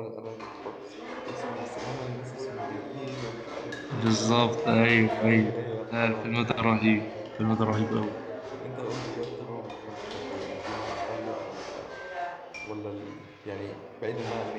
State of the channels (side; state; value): both; identical; correlation 1.00